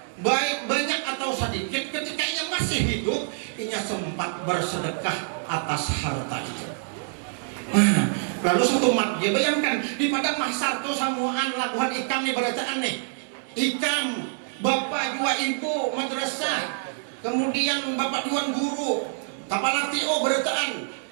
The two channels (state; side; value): silent; left; digital silence